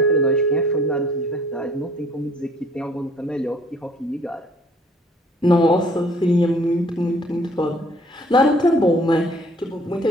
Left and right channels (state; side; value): normal; both; correlation 0.57